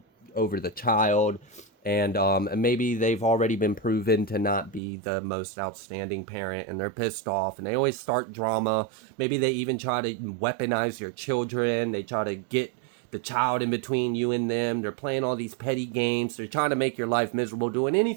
over the child, and maybe they've already been proven to not be the most outstanding parent, and they're pissed off, and they always start drama. Maybe they even try to weaponize your children. They try to get the child in between you and them. They're playing all these petty games. They're trying to make your life miserable, doing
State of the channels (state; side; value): drops out; left; at 4.8 s